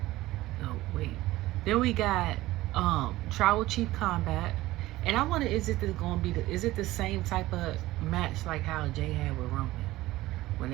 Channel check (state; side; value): quieter; left; 17.2 dB